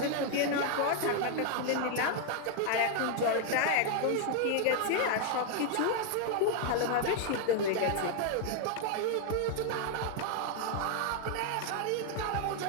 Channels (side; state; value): both; different; correlation 0.00